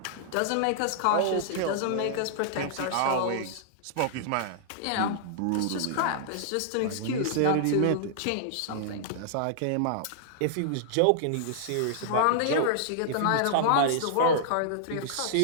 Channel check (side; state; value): both; different; correlation -0.01